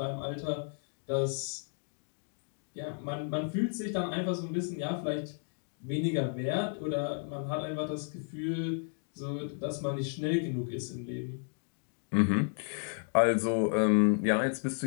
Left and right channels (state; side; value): silent; right; 56 dB below the other